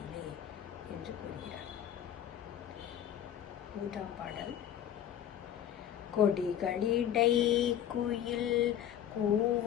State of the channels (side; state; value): right; quieter; 10.3 dB